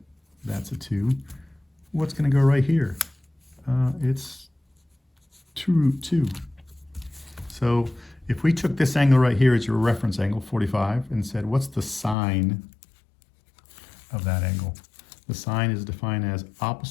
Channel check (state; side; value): drops out; right; at 12.2 s